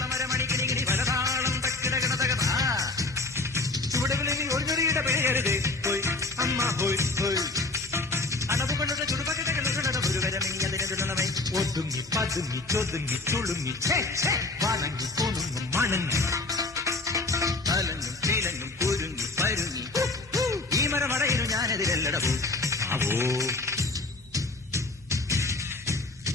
మరమణికిని വരതാളം തക്കിടകിടതകത ചുവടുകളിൽ ഒരു ചെറിയുടെ പേരുതേ പോയി അമ്മ പോയി പോയി അടവുകളുടെ ചുടുപകടകളുടെ ഒരു വരമെങ്കിലതിനെ ഒതുങ്ങി പതുങ്ങി ചൊതുങ്ങി ചുളുങ്ങി വണങ്ങി കൊണുങ്ങും മണങ്ങി തലങ്ങും തീലങ്ങും കുരുങ്ങി പരുങ്ങി ഈ മരമടയിലും ഞാനെതിരല്ലട പോ ആവോ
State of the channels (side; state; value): right; quieter; 3.1 dB